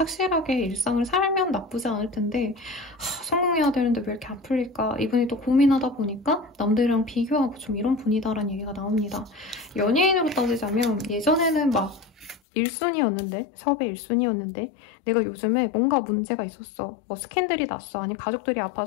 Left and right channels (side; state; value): right; drops out; at 12.4 s